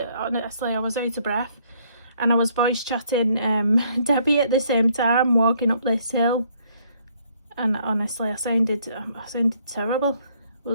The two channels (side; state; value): both; inverted; correlation -0.66